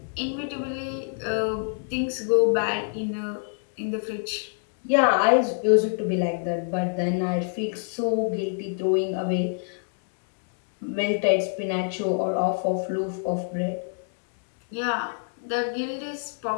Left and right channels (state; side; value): silent; right; digital silence